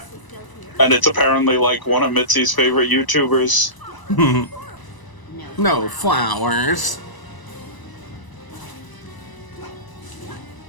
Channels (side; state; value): right; late; 1.0 ms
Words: And it's apparently like one of Mitzi's favorite YouTubers. No flowers.